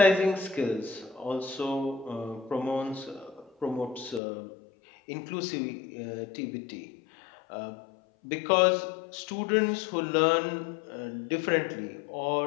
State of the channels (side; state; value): right; drops out; at 4.2 s